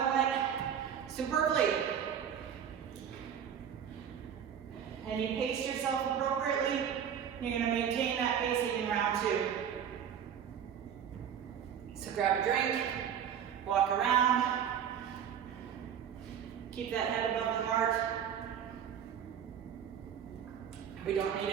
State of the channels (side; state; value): left; quieter; 8.6 dB